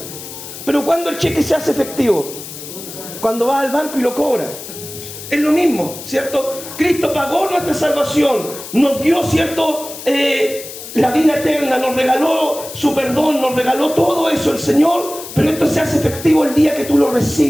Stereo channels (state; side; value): noise; left; hiss, 12 dB below the sound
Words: pero ¿cuándo el cheque se hace efectivo? Cuando vas al banco y lo cobras. Es lo mismo, ¿cierto? Cristo pagó nuestra salvación, nos dio, ¿cierto?, la vida eterna, nos regaló su perdón, nos regaló todo eso el Señor, pero esto se hace efectivo el día que tú lo